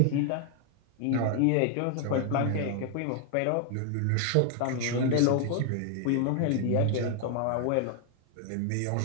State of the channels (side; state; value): both; different; correlation 0.00